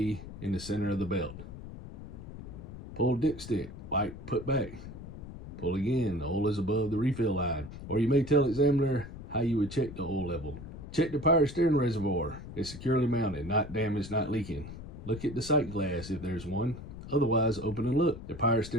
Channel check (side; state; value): left; noise; rumble, 12 dB below the sound